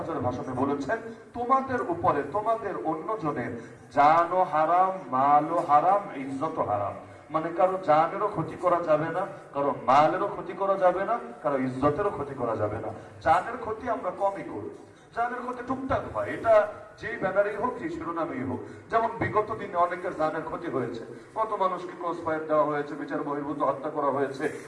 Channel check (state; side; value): identical; both; correlation 1.00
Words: ভাষণে বলেছেন, তোমাদের উপরে তোমাদের অন্যজনের জানও হারাম, মালও হারাম, ইজ্জতও হারাম। মানে কারো জানেরও ক্ষতি করা যাবে না, কারো মালেরও ক্ষতি করা যাবে না, কারো ইজ্জতেরও ক্ষতি করা যাবে না। জানের ক্ষতি আমরা কমই করি, জানের ক্ষতি টুকটাক হয়, এটা যেই ব্যানারেই হোক, যে শিরোনামেই হোক। যেমন বিগত দিনে অনেকের জানের ক্ষতি হয়েছে, কত মানুষকে ক্রস ফায়ার দেওয়া হয়েছে, বিচার বহির্ভূত হত্যা করা হয়েছে,